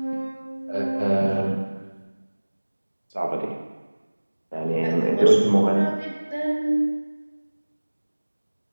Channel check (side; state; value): both; inverted; correlation -1.00